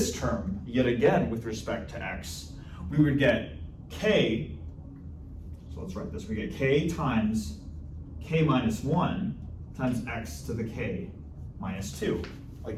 term, yet again with respect to x, we would get k, so let's write this, we get k times k minus 1 times x to the k minus 2,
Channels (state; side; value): identical; both; correlation 1.00